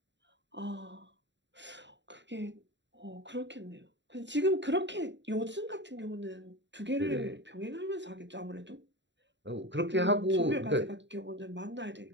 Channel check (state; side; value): late; left; 0.52 ms